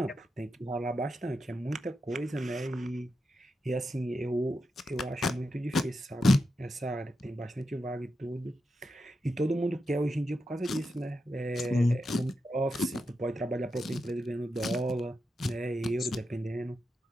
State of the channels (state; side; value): normal; both; correlation 0.87